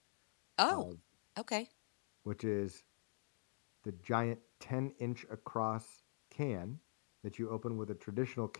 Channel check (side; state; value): right; silent; digital silence